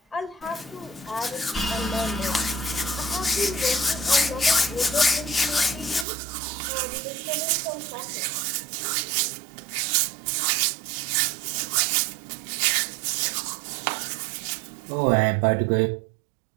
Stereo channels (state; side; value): drops out; left; at 6.1 s